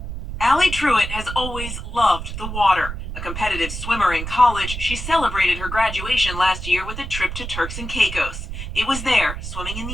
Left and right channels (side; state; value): right; noise; rumble, 7 dB below the sound